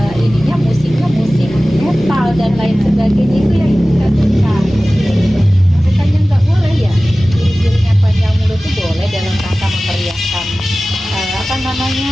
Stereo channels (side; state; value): both; normal; correlation 0.97